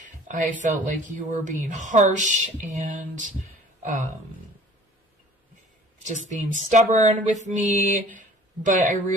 I felt like you were being harsh and just being stubborn with me. But I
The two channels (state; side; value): normal; both; correlation 0.49